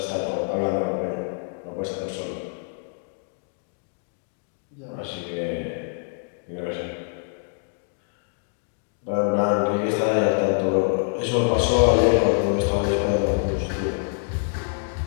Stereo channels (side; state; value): right; silent; digital silence